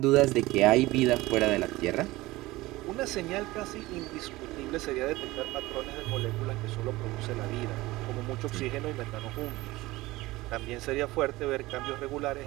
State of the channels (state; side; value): quieter; left; 19.3 dB